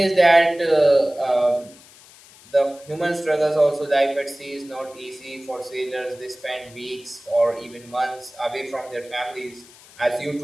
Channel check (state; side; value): noise; left; hiss, 23 dB below the sound